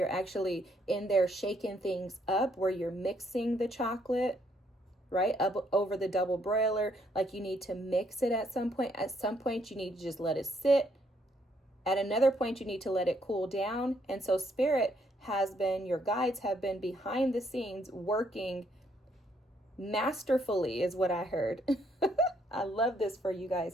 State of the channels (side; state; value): both; normal; correlation 0.71